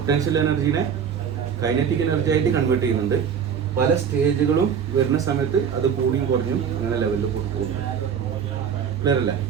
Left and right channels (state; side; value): quieter; left; 7.6 dB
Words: എനർജീനെ കൈനറ്റിക് എനർജി ആയിട്ട് കൺവേർട്ട് ചെയ്യുന്നുണ്ട്. പല സ്റ്റേജുകളും വരുന്ന സമയത്ത് അത് കൂടിയും കുറഞ്ഞും അങ്ങനെ ലെവലിൽ പോകും. ക്ലിയർ അല്ലേ?